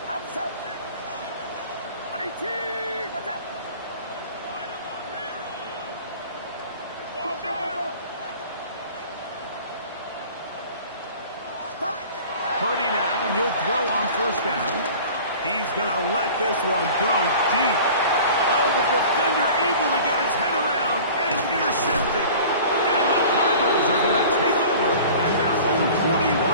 Outside. 18. Watch out. Purdy now, he'll throw on 1st down. He's going to let this one go deep. Oh, the defender able to get his head around and intercept it. And the Cardinals are going to take over at their own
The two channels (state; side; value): inverted; both; correlation -0.43